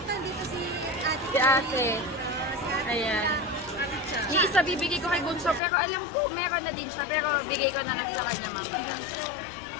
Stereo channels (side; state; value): right; drops out; at 5.6 s